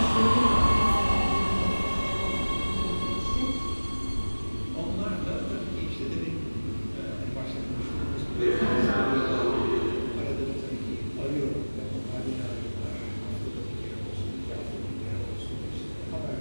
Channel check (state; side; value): inverted; both; correlation -1.00